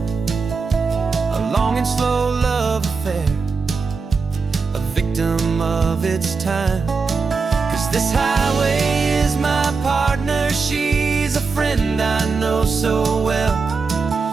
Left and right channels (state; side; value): quieter; left; 4.6 dB